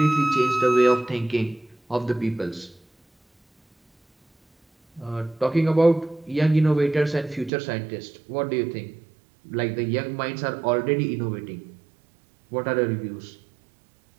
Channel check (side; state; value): left; drops out; at 7.5 s